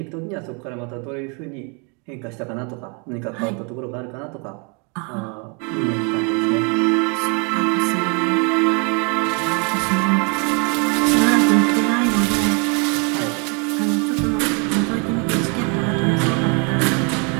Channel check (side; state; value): left; quieter; 34.6 dB